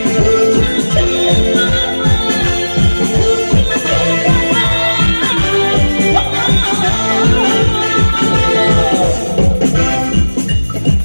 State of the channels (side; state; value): both; inverted; correlation -1.00